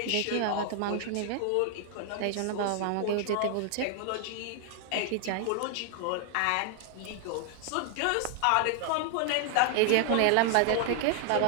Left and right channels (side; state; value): both; different; correlation 0.00